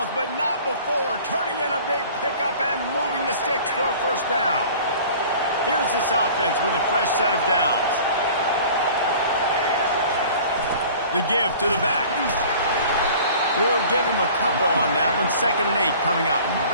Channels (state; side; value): inverted; both; correlation -0.45